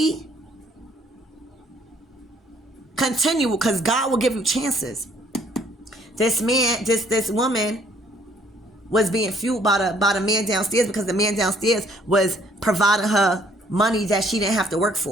continual, because God will give you chances. This man, this woman was being fueled by the man downstairs, because the man downstairs was providing her money that she didn't have to work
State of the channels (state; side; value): normal; both; correlation 0.63